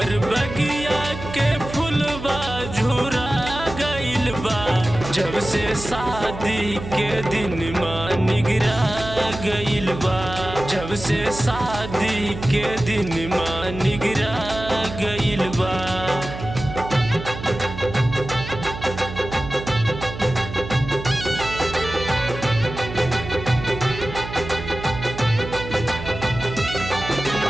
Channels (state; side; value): noise; right; hum, 10 dB below the sound